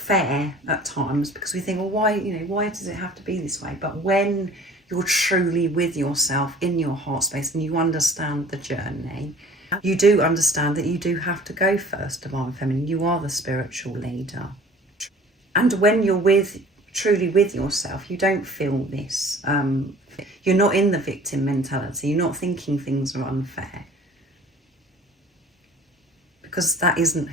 at times, because we think, well, why does it have to be this way? But when you're truly with yourself in your heart space and you understand the journey, you do understand that you do have to go first, divine feminine. You are the spiritual leader. And when you're truly with yourself, you don't feel this. You're not in the victim mentality. You're not thinking things are unfair. Because that isn't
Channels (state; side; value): normal; both; correlation 0.47